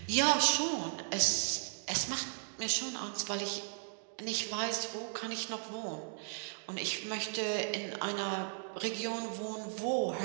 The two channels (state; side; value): silent; left; digital silence